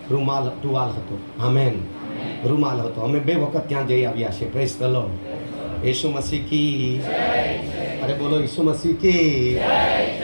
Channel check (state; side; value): inverted; both; correlation -1.00